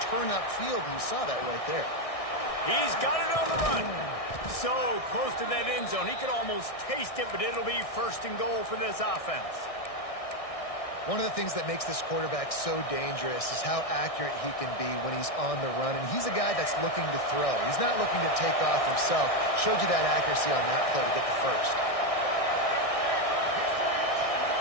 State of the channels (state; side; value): late; right; 1.6 ms